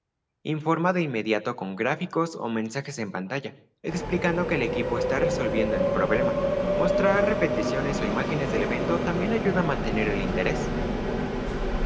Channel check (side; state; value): both; identical; correlation 1.00